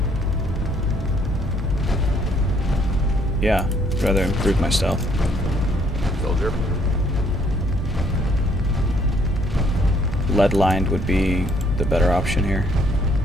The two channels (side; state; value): both; normal; correlation 0.66